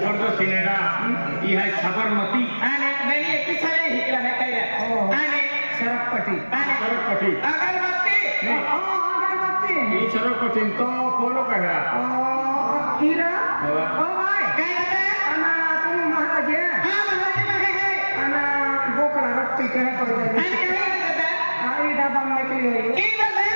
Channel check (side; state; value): both; inverted; correlation -1.00